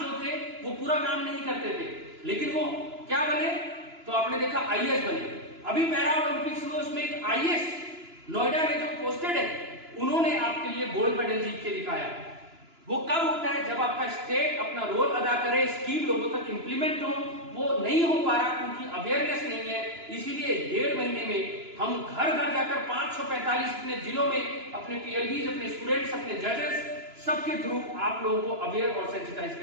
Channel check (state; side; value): late; left; 2.9 ms